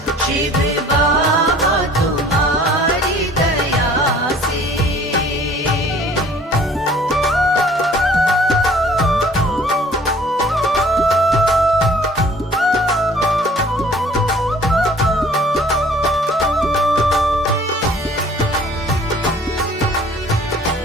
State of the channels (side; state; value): both; normal; correlation 0.53